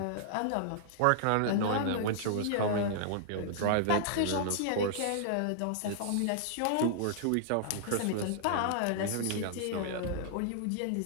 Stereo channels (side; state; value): both; different; correlation -0.01